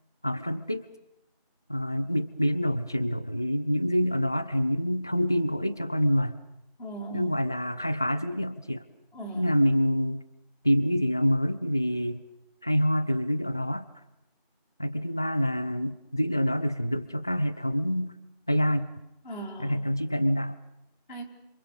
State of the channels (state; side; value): inverted; both; correlation -0.97